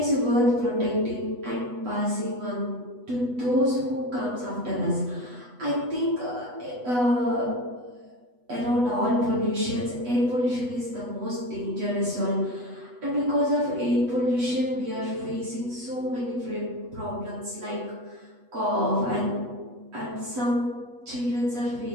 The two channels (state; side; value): late; left; 8.1 ms